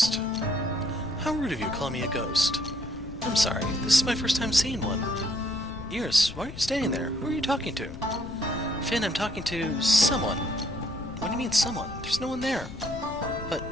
How rude of you calling me a ghost. I'm sorry, this is my first time seeing one. Iris, why are you standing there? Who are you talking to? Finn, I'm talking to someone. What do you mean someone? There's no one there. But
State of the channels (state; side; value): noise; left; rumble, 13 dB below the sound